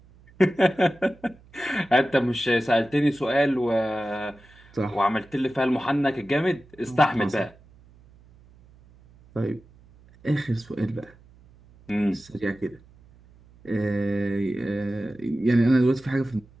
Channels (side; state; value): right; noise; hum, 26 dB below the sound